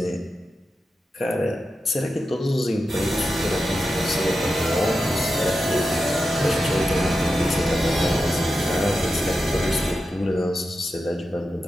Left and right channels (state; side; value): normal; both; correlation 0.90